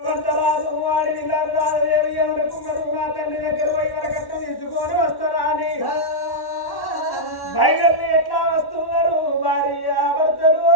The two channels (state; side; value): late; right; 1.1 ms